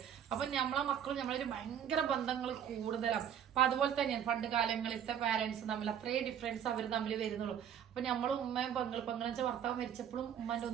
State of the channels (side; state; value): left; quieter; 9.1 dB